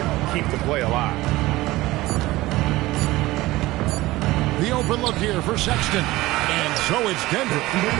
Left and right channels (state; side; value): quieter; left; 18.5 dB